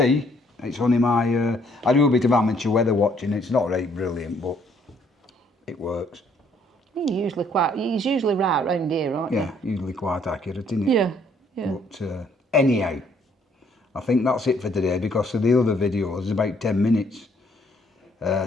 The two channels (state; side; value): normal; both; correlation 0.65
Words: It's only my, I do a bit of amateur weather watching. It's not really brilliant, but it works. He's usually right round here, aren't you? Yeah, usually quite accurate, isn't it? Yeah, yeah. But anyhow, I think that's it for today because of the other videos, it's about 10 minutes.